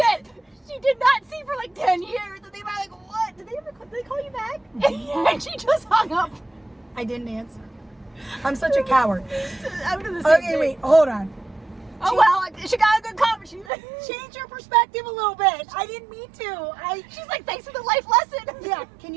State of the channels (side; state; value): left; drops out; at 13.7 s